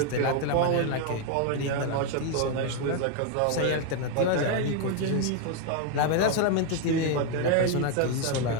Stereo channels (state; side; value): different; both; correlation 0.01